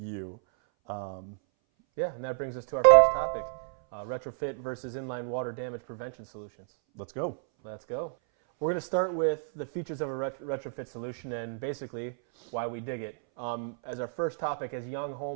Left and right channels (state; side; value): silent; left; 58 dB below the other